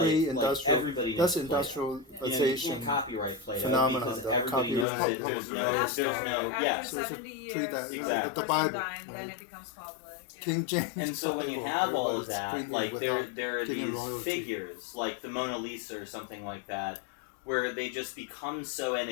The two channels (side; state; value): right; drops out; at 4.9 s